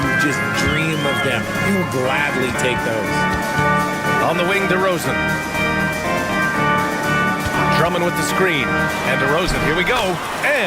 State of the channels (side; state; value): both; identical; correlation 1.00